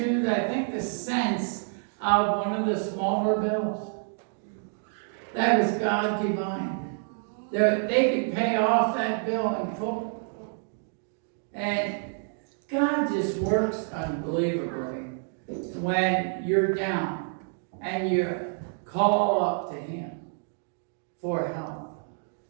I think, the cents of one of the smaller bills. That was God divine. They could pay off that bill in full. And God just works unbelievably when you're down and you call up to Him for help.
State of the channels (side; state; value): left; silent; 57 dB below the other